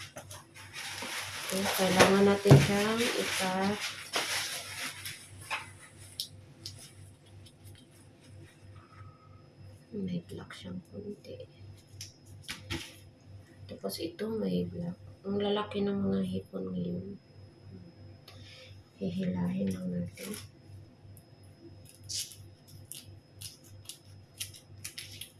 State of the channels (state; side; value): identical; both; correlation 1.00